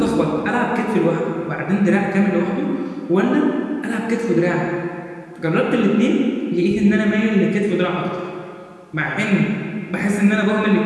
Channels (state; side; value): identical; both; correlation 1.00